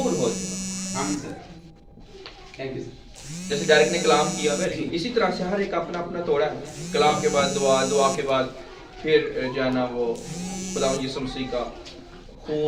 हो जाए। Thank you. जैसे डायरेक्ट ने कलाम किया, इसी तरह से हर एक अपना अपना तोड़ा है। कलाम के बाद दुआ, दुआ के बाद फिर जो है ना वो खुदा यीशु मसीह का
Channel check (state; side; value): identical; both; correlation 1.00